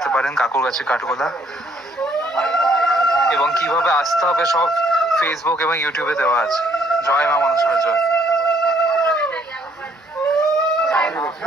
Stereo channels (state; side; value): normal; both; correlation 0.65